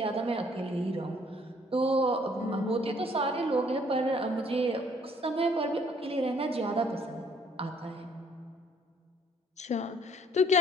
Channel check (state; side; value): normal; both; correlation 0.62